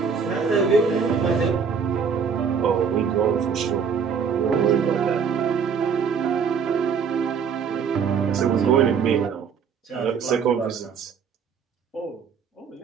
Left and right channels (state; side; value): quieter; left; 6.4 dB